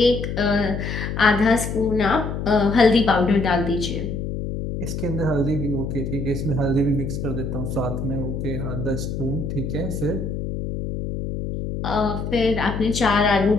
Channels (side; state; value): left; noise; hum, 4 dB below the sound